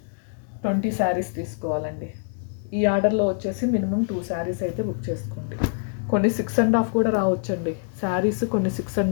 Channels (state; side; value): silent; right; digital silence